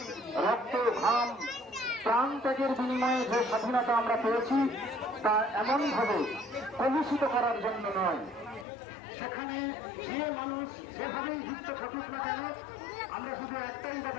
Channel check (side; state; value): right; drops out; at 8.7 s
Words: রক্ত ঘাম প্রাণ ত্যাগের বিনিময়ে যে স্বাধীনতা আমরা পেয়েছি, তা এমনভাবে কলুষিত করার জন্য নয়। সেখানে যে মানুষ যেভাবেই যুক্ত থাকুক না কেন, আমরা শুধু একটাই